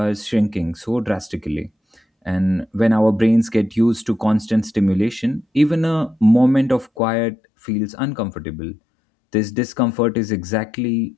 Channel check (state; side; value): drops out; right; at 6.9 s